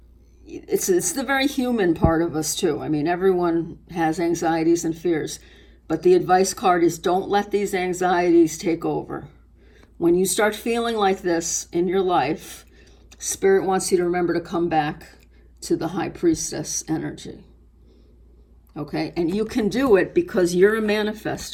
it's the very human part of us too. I mean, everyone has anxieties and fears, but the advice card is don't let these anxieties take over. When you start feeling like this in your life, Spirit wants you to remember to come back to the High Priestess energy. Okay, and you can do it because you're a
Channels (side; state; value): both; identical; correlation 1.00